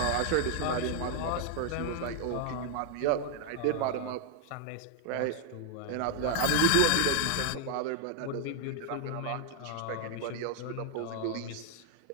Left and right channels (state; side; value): different; both; correlation 0.00